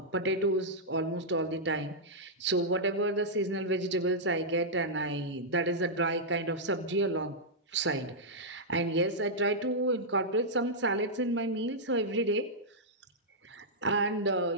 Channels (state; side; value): normal; both; correlation -0.09